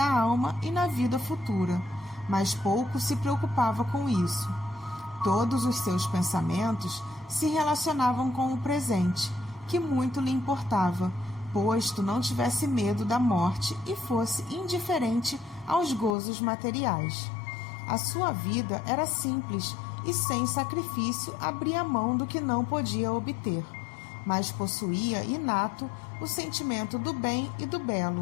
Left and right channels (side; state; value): right; drops out; at 16.2 s